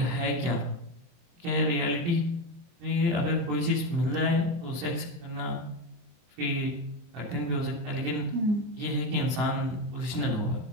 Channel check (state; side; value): late; left; 23 ms